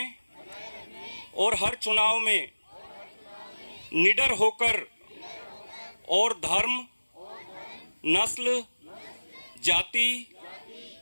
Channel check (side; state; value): both; inverted; correlation -1.00